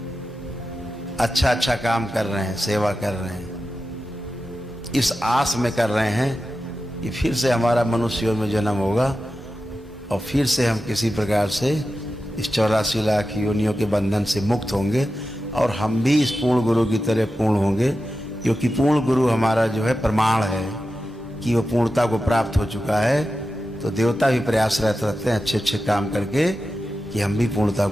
अच्छा अच्छा काम कर रहे हैं, सेवा कर रहे हैं, इस आस में कर रहे हैं कि फिर से हमारा मनुष्य में जन्म होगा और फिर से हम किसी प्रकार से इस 84 लाख योनियों के बंधन से मुक्त होंगे और हम भी इस पूर्ण गुरु की तरह पूर्ण होंगे, क्योंकि पूर्ण गुरु हमारा जो है प्रमाण है कि वो पूर्णता को प्राप्त हो चुका है। तो देवता भी प्रयासरत रहते हैं अच्छे अच्छे काम करके कि हम भी पूर्णता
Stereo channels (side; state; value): both; normal; correlation 0.92